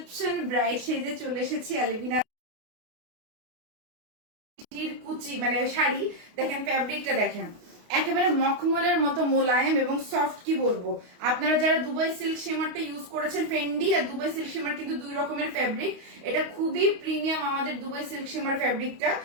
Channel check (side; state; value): left; late; 28 ms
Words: ব্রাইড সেজে চলে এসেছি আলভিনা কুচি মানে শাড়ি। দেখেন ফ্যাব্রিকটা দেখেন, একেবারে মখমলের মতো মোলায়েম এবং সফট। কি বলবো, আপনারা যারা দুবাই সিল্ক শিমারটা ইউজ করেছেন, ফেন্ডি আর দুবাই সিল্ক শিমার কিন্তু দুই রকমের ফ্যাব্রিক। এটা খুবই প্রিমিয়াম আমাদের দুবাই সিল্ক শিমার ফ্যাব্রিকটা,